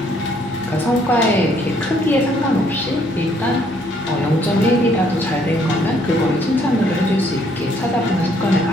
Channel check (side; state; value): both; normal; correlation 0.66